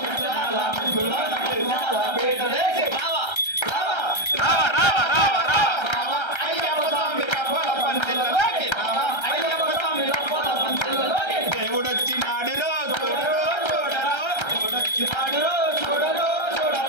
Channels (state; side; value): late; right; 1.3 ms